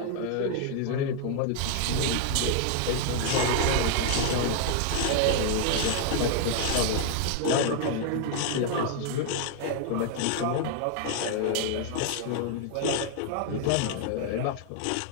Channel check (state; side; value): different; both; correlation 0.00